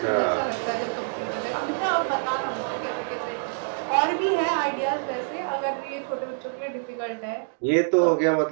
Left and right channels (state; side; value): silent; left; digital silence